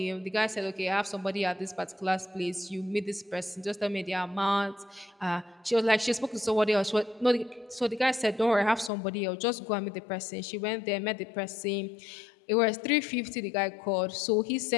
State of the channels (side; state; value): right; drops out; at 8.9 s